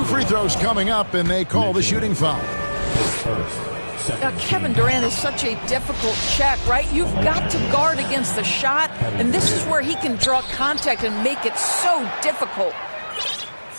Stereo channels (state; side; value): inverted; both; correlation -1.00